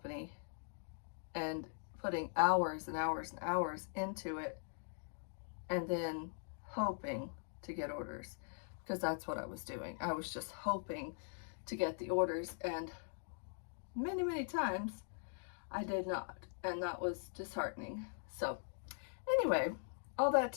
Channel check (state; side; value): silent; right; digital silence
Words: and putting hours and hours and hours into it and then hoping to get orders, because that's what I was doing. I was just hoping to get the orders, and many times I did not, and that was disheartening. So anyway, all that